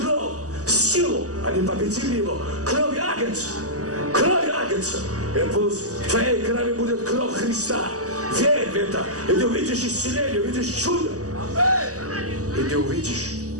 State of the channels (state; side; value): late; left; 0.66 ms